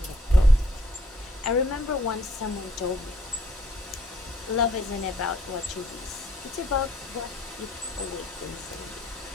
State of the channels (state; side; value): normal; both; correlation 0.64